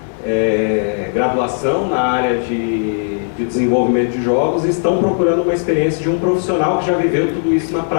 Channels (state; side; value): silent; right; 69 dB below the other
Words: graduação na área de desenvolvimento de jogos e estão procurando uma experiência de um profissional que já viveu tudo isso na